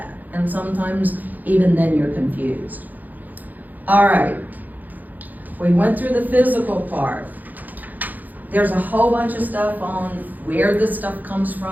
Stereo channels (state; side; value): late; left; 0.083 ms